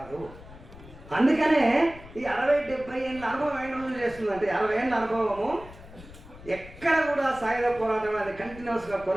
అందుకనే ఈ 60-70 ఏళ్ళ అనుభవం ఏంటో చేస్తుందంటే 60 ఏళ్ళ అనుభవము ఎక్కడ కూడా సాయుధ పోరాటం అనేది కంటిన్యూస్గా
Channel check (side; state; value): left; noise; rumble, 18 dB below the sound